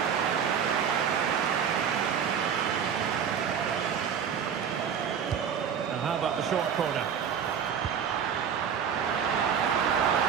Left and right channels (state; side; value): quieter; left; 7.7 dB